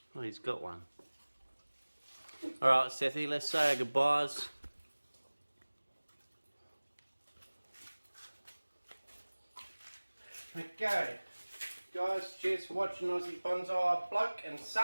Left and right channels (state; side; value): inverted; both; correlation -1.00